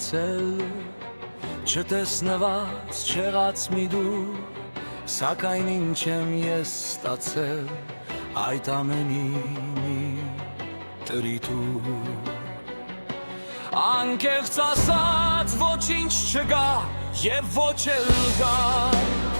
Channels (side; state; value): both; inverted; correlation -1.00